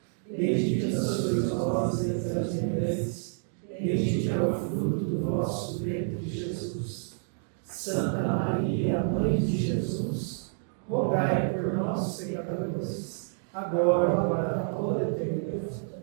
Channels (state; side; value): silent; left; digital silence